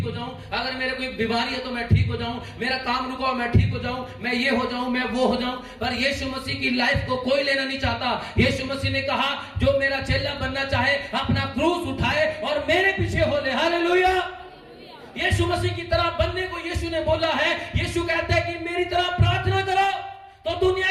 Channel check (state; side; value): identical; both; correlation 1.00